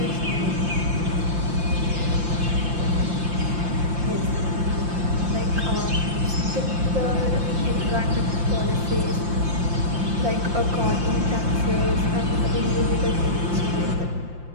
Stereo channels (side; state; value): left; late; 5.7 ms